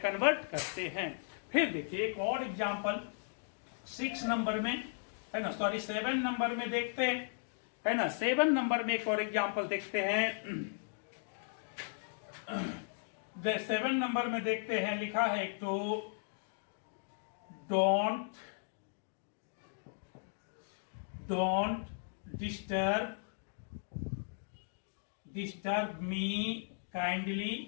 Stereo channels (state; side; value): silent; right; digital silence